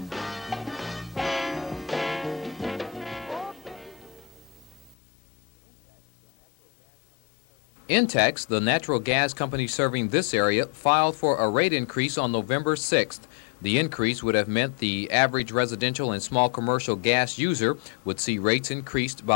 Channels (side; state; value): right; drops out; at 5.0 s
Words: Intex, the natural gas company serving this area, filed for a rate increase on November 6th. The increase would have meant the average residential and small commercial gas user would see rates increased